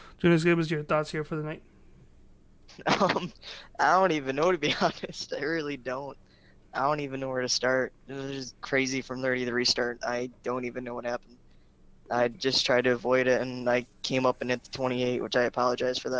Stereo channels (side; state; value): both; identical; correlation 1.00